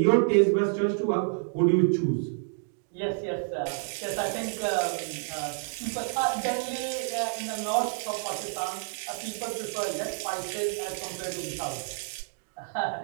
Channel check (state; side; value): silent; left; digital silence